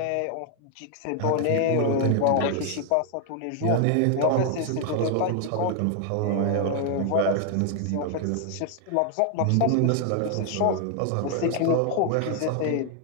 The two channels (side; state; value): both; different; correlation 0.00